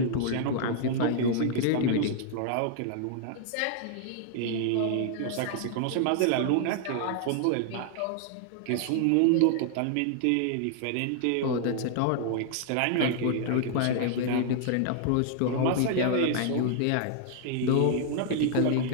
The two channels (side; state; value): both; different; correlation 0.00